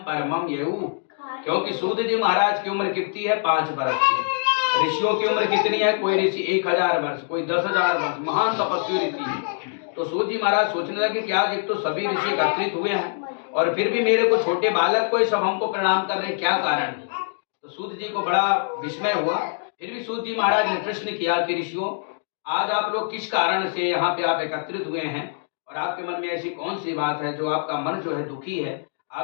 परमम येऊ, क्योंकि सूत जी महाराज की उम्र कितनी है? 5 वर्ष की। ऋषियों की उम्र कितनी है? कोई ऋषि 1000 वर्ष, कोई 10,000 वर्ष, महान तपस्वी ऋषि। तो सूत जी महाराज सोचने लगे कि आज एक तो सभी ऋषि एकत्रित हुए हैं और फिर भी मेरे को छोटे बालक को सब हमको प्रणाम कर रहे, क्या कारण है? तो सूत जी को बड़ा विस्मय हुआ। फिर भी सूत जी महाराज ने प्रश्न किया कि ऋषियों, आज आप लोग किस कारण से यहाँ पे आप एकत्रित हुए हैं और आपके मन में ऐसी कौन सी बात है जो आपका मन जो है दुखी है?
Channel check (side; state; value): right; silent; digital silence